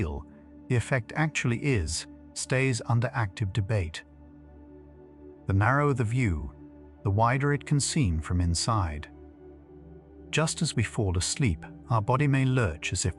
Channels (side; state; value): both; identical; correlation 1.00